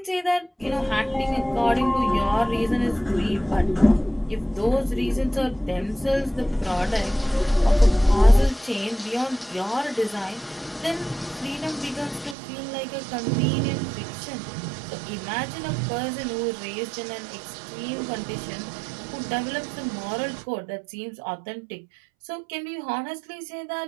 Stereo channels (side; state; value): left; drops out; at 12.4 s